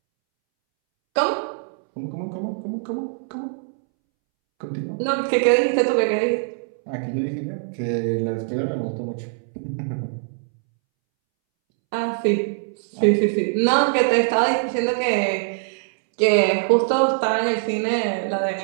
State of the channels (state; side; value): silent; left; 64 dB below the other